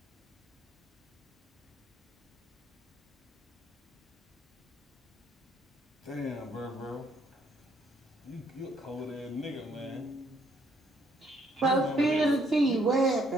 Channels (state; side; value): normal; both; correlation 0.69